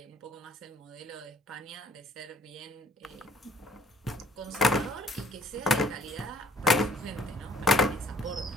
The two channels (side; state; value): both; normal; correlation 0.58